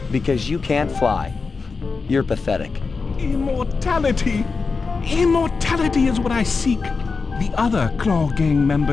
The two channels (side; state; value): right; quieter; 4.6 dB